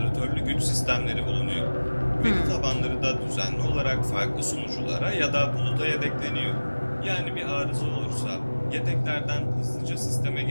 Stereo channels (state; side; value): inverted; both; correlation -1.00